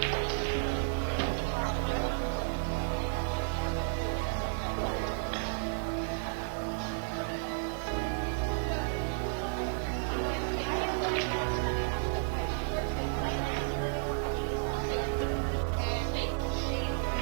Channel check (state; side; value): silent; left; digital silence